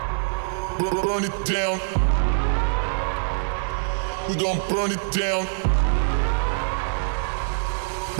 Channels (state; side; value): silent; left; digital silence